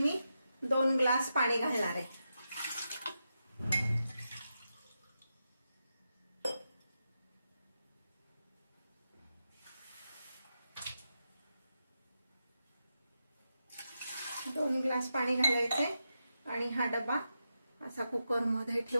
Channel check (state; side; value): inverted; both; correlation -0.87